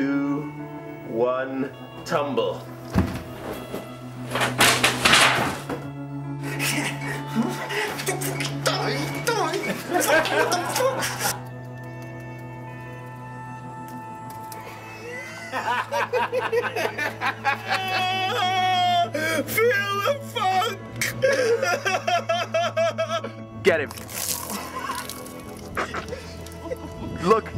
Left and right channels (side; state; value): both; identical; correlation 1.00